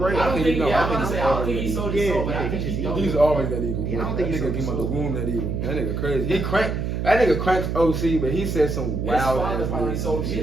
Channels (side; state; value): right; noise; hum, 2 dB below the sound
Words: I don't think. No, Yeah, I I'm gonna think say. I don't think he sold his Yeah, soul, but yeah, I think he he just don't. He's always that evil. Yeah, I don't That think he nigga sold came out the his womb that evil. That nigga crazy. That nigga cranks OC, but he said some His wild father ass probably words. sold